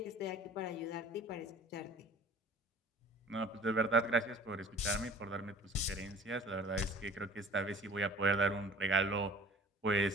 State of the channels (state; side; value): normal; both; correlation 0.47